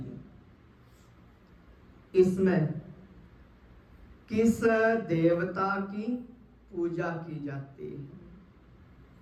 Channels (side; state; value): both; identical; correlation 1.00